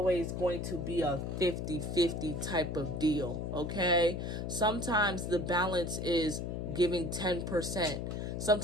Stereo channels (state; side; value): noise; left; hum, 3 dB below the sound